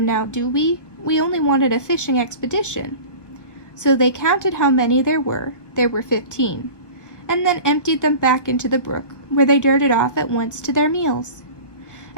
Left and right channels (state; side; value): late; right; 1.2 ms